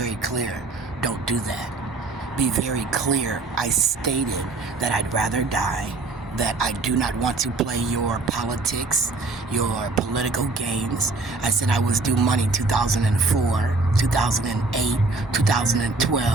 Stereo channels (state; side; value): quieter; left; 3.5 dB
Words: clear. Don't do that. Be very clear. I stated that I'd rather die, that I do not want to play your politics, your political games. I said I was due money 2004, 2008,